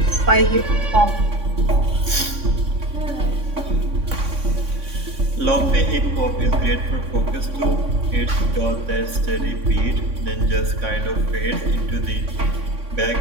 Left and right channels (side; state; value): left; late; 3.6 ms